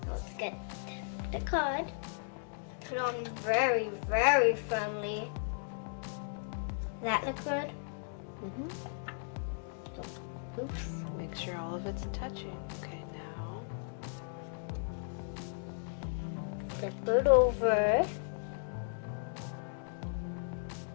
So let's get the card, put on very, very firmly. That look good? Mm-hmm. Oops. Make sure all of it's touching. Okay, now. Flip it over.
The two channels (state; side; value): silent; right; digital silence